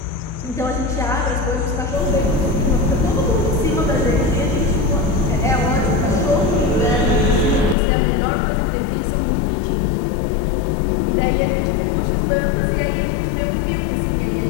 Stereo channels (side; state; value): right; drops out; at 7.8 s